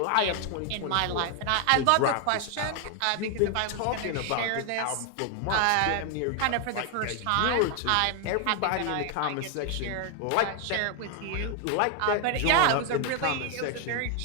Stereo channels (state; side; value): different; both; correlation 0.00